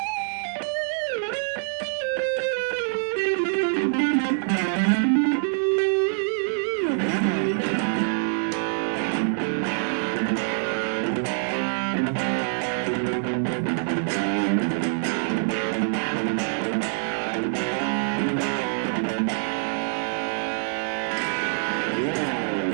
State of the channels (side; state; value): left; silent; 62 dB below the other